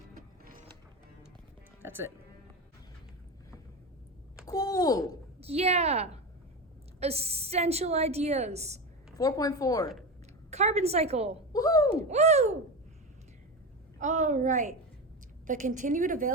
That's it. Cool. Yeah. Essential ideas. 4.4. Carbon cycle. Woohoo! Woo! All right. The continued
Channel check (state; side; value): normal; both; correlation 0.20